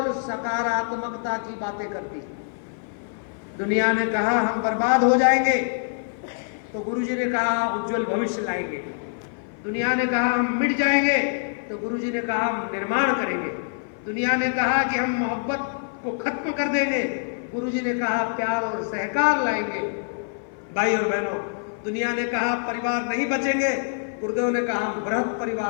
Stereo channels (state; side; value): silent; right; 55 dB below the other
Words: सकारात्मकता की बातें करती है। दुनिया ने कहा हम बर्बाद हो जाएंगे, तो गुरुजी ने कहा उज्जवल भविष्य लाएंगे। दुनिया ने कहा हम मिट जाएंगे, तो गुरुजी ने कहा हम निर्माण करेंगे। दुनिया ने कहा कि हम मोहब्बत को खत्म कर देंगे, गुरुजी ने कहा प्यार और सहकार लाएंगे। भाई और बहनों, दुनिया ने कहा परिवार नहीं बचेंगे, गुरुदेव ने कहा हम बृहद